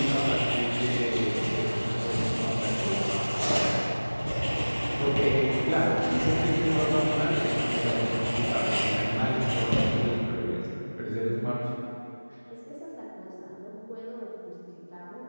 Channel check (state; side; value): inverted; both; correlation -1.00